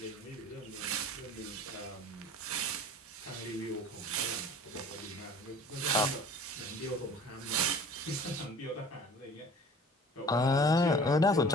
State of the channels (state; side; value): normal; both; correlation 0.45